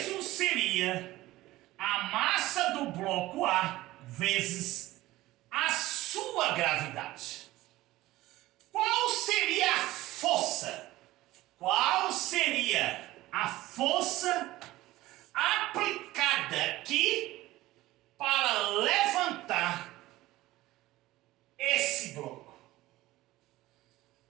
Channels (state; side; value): quieter; left; 17.2 dB